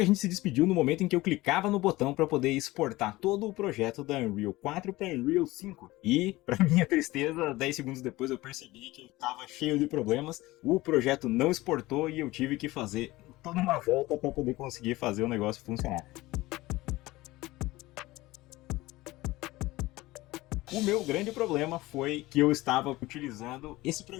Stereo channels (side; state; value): right; quieter; 19.2 dB